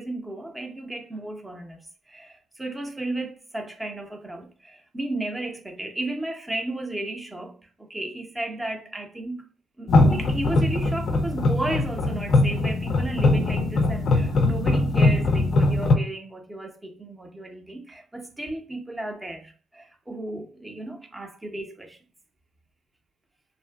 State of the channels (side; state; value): both; normal; correlation 0.77